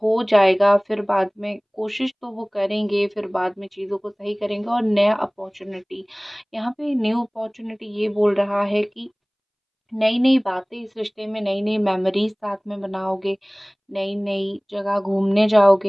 जाएगा, फिर बाद में कोशिश तो वो करेंगे, फिर बाद में चीज़ों को सही करेंगे और नया अपॉर्चुनिटी, यहाँ पे न्यू अपॉर्चुनिटी ये बोल रहा है कि नई नई बातें इस रिश्ते में, नई नई मेमोरीज साथ में बनाओगे, नई नई जगह घूमने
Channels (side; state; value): both; identical; correlation 1.00